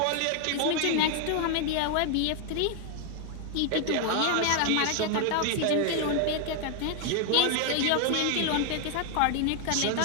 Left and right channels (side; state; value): both; different; correlation 0.00